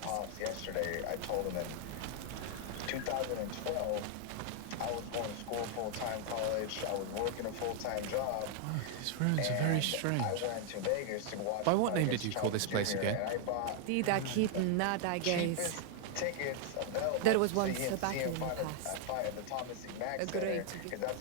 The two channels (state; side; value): different; both; correlation 0.00